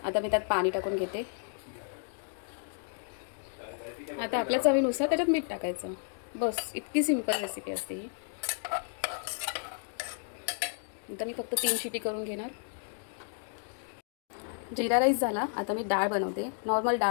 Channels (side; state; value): right; silent; 56 dB below the other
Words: आता मी त्यात पाणी टाकून घेते. आता आपल्या चवीनुसार त्याच्यात मीठ टाकायचं. बस, इतकी सिंपल रेसिपी असते ही. आता मी फक्त 3 शिटी करून घेणार. जिरा राईस झाला. आता मी डाळ बनवते. नॉर्मल